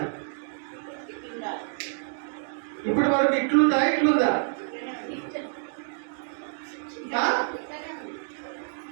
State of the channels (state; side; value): silent; left; 59 dB below the other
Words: ఇప్పటి వరకు ఇట్లుందా?